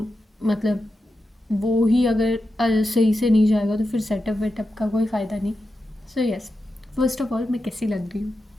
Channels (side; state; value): both; normal; correlation 0.89